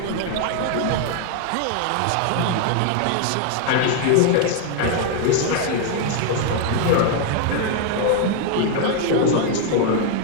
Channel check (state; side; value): different; both; correlation 0.00